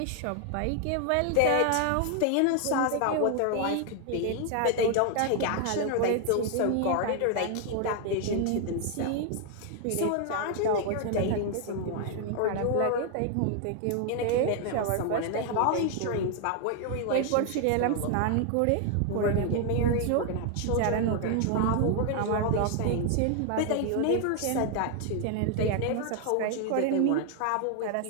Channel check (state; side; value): different; both; correlation 0.00